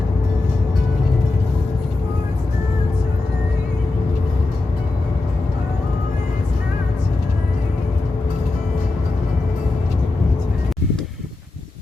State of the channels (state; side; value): quieter; right; 3.3 dB